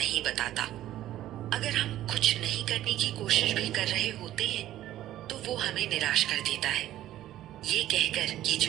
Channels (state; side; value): quieter; left; 13.5 dB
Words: बताता। अगर हम कुछ नहीं करने की कोशिश भी कर रहे होते हैं, तो वो हमें निराश कर देता है, ये कहकर कि